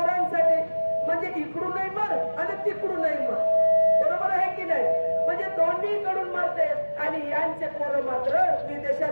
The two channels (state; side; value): inverted; both; correlation -1.00